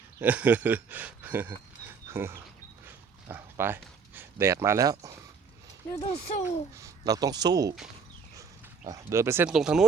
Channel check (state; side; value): quieter; left; 5.6 dB